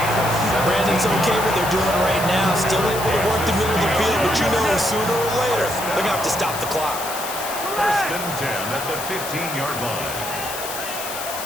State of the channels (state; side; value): noise; left; hiss, 8 dB below the sound